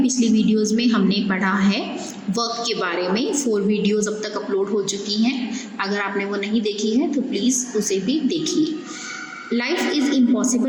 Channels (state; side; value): identical; both; correlation 1.00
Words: पिछली वीडियोस में हमने पढ़ा है वर्क के बारे में। 4 वीडियोस अब तक अपलोड हो चुकी हैं। अगर आपने वो नहीं देखी है तो प्लीज़ उसे भी देखिए। Life is